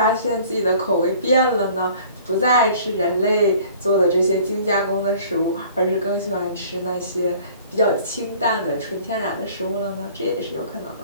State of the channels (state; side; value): inverted; both; correlation -0.51